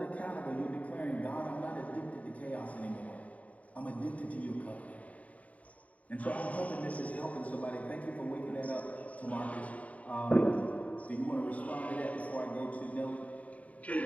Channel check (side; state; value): right; late; 0.069 ms